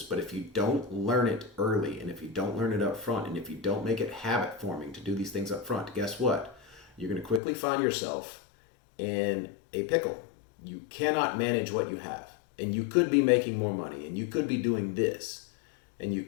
but if you don't learn it early, and if you don't learn it up front, and if you don't make it habit forming to do these things up front, guess what? You're going to quickly find yourself in a pickle. You cannot manage what you have, and you could be making more money, and you could be doing this, and you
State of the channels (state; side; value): drops out; right; at 7.4 s